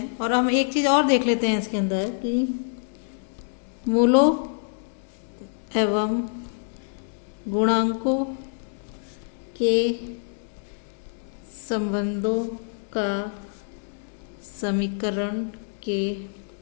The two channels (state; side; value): silent; right; digital silence